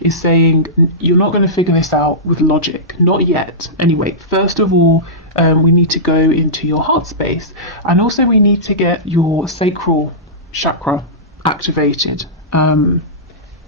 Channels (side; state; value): both; normal; correlation -0.17